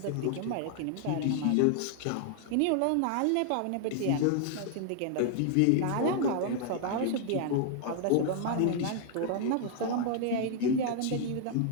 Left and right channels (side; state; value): both; different; correlation 0.00